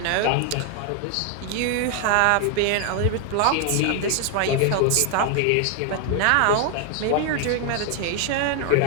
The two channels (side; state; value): both; different; correlation 0.00